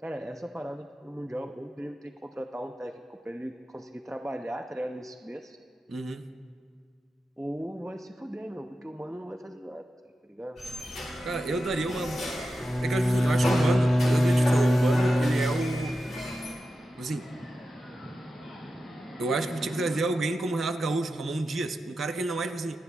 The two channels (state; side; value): normal; both; correlation 0.91